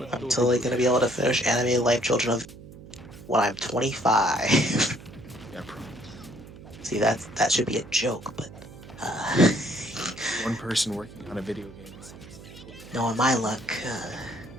I'm totally gonna be able to finish Animated Life Children of when I'm 25. Yeah, probably. See, that should be a joke, but One person working on a video game seems like knowing my luck,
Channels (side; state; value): right; noise; hum, 17 dB below the sound